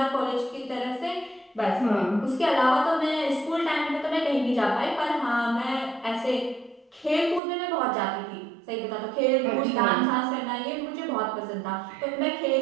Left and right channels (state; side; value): drops out; left; at 7.4 s